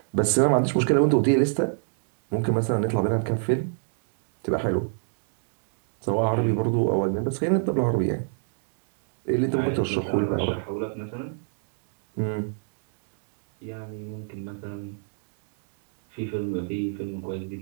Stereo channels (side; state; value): left; silent; digital silence